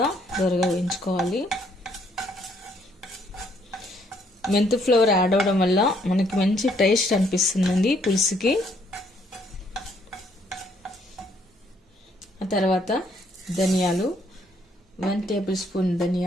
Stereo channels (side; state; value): both; normal; correlation 0.68